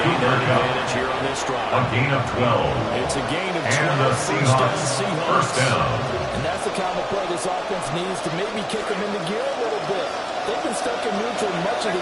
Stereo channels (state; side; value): identical; both; correlation 1.00